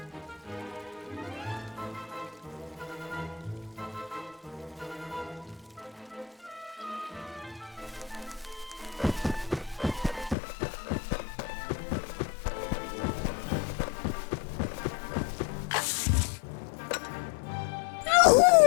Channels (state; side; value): drops out; right; at 10.4 s